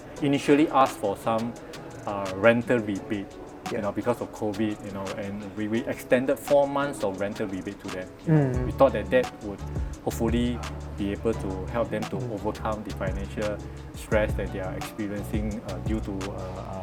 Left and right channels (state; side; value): identical; both; correlation 1.00